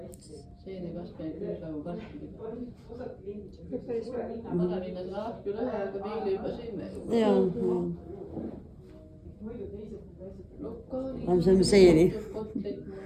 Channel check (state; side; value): identical; both; correlation 1.00